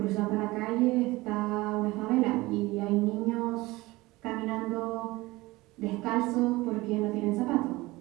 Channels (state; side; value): quieter; left; 20.6 dB